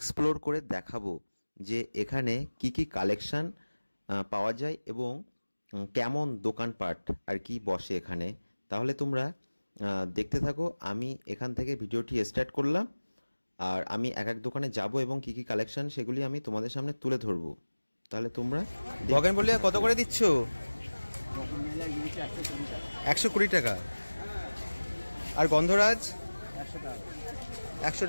করে দেখাবো, যে এখানে কি কি কালেকশান পাওয়া যায় এবং কেমন দোকানপাট আর কি বসে এখানে। তাহলে তোমরা দেখতে থাকো। আমি এখান থেকে ভিডিওটি স্টার্ট করলাম, আর আমি এক এক দোকানে যাব এবং কি কি কালেকশান সেগুলি আমি তোমাদের সামনে তুলে ধরবো। তাহলে তোমরা বগেন বলিয়া কত করে দিচ্ছ? 120 টাকা। আর গন্ধরাজ 100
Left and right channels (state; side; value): inverted; both; correlation -1.00